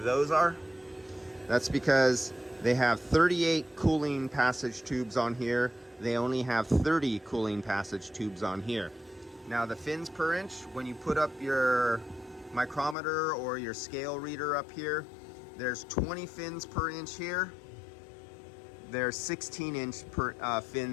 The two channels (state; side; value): drops out; right; at 13.0 s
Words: are? That's because they have 38 cooling passage tubes on here. They only have 30 cooling passage tubes on here. Now the fins per inch, when you put up your micrometer or your scale reader up here, there's 20 fins per inch here. There's 16 inch